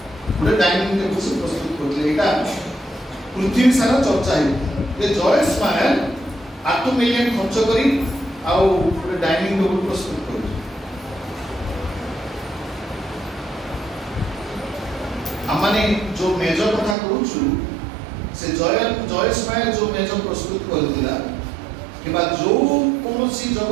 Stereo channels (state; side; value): drops out; left; at 16.9 s